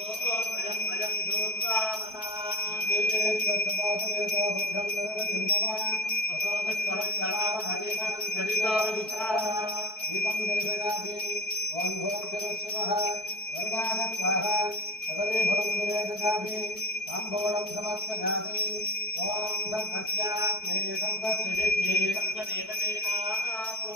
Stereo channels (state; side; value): late; right; 4.6 ms